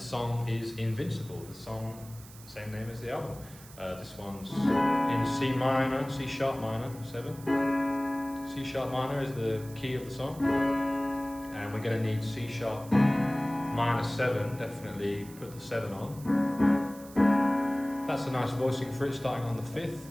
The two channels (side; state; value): right; noise; hiss, 20 dB below the sound